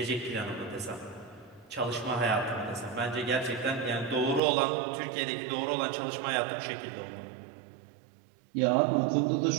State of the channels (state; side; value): drops out; left; at 4.4 s